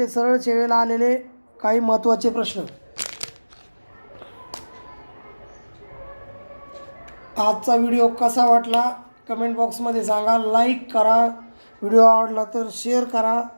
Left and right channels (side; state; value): both; inverted; correlation -1.00